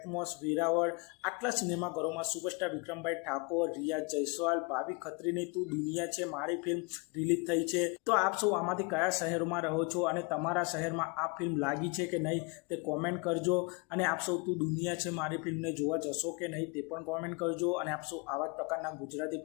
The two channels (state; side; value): quieter; right; 29.1 dB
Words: Veraval આટલા સિનેમાઘરોમાં superstar વિક્રમભાઈ ઠાકોર, રિયા જયસ્વાલ, ભાવિ ખત્રીની તું દુનિયા છે મારી film release થઈ છે। તો આપ સૌ આમાંથી કયા શહેરોમાં રહો છો અને તમારા શહેરમાં આ ફિલ્મ લાગી છે કે નહીં તે કોમેન્ટ કરજો, અને આપ સૌ તું દુનિયા છે મારી ફિલ્મને જોવા જશો કે નહીં તે પણ કોમેન્ટ કરજો। અને આપ સૌ આવા જ પ્રકારના ગુજરાતી